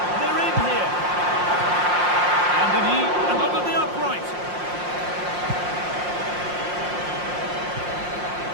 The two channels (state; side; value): late; left; 5.6 ms